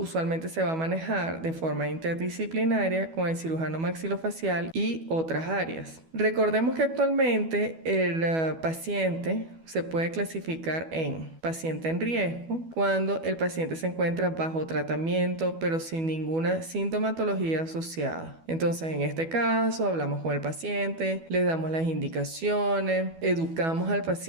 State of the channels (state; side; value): late; left; 12 ms